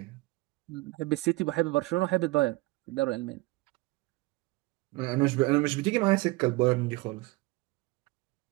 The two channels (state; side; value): quieter; left; 22.1 dB